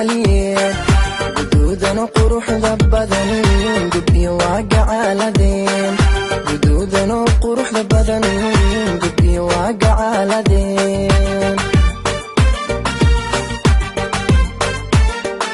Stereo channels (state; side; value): identical; both; correlation 1.00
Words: guduudan quruxda badan gabdhiyo waa gacaaladeen guduudan quruxda badan gabdhiyo waa gacaaladeen